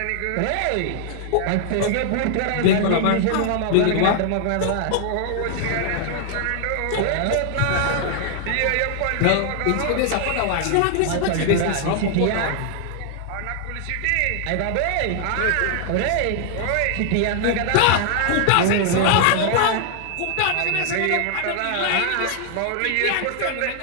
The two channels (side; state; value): both; different; correlation 0.00